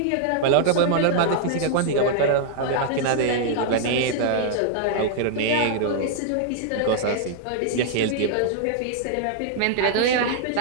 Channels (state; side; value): different; both; correlation -0.01